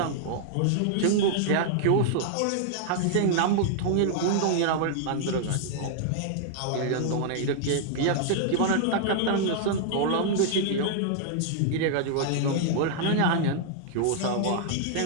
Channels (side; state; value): both; different; correlation -0.01